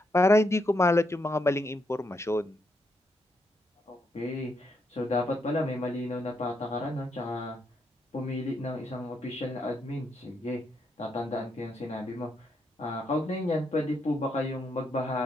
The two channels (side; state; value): both; normal; correlation 0.78